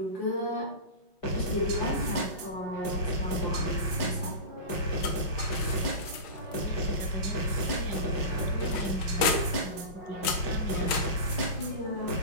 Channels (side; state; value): right; late; 6.2 ms